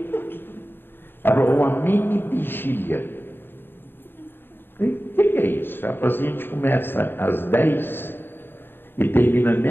Ela falou, uma mini vigília. O que é isso? Ela falou assim, a gente começa às 10 e termina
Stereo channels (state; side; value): late; right; 0.10 ms